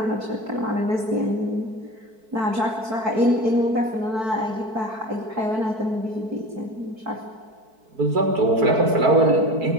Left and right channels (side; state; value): left; late; 4.6 ms